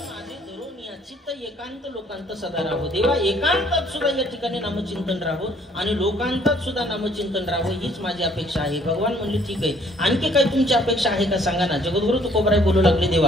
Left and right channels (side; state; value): both; normal; correlation 0.61